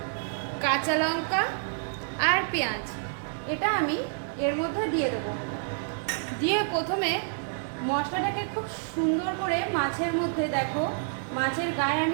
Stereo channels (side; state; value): left; silent; digital silence